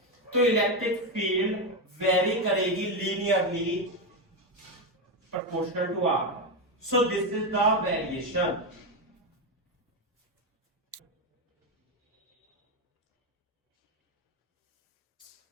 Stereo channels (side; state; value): both; normal; correlation 0.10